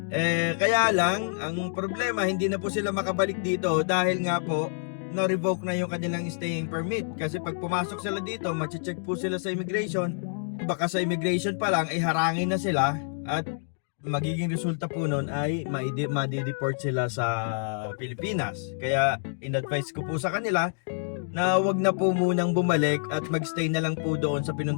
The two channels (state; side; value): silent; right; digital silence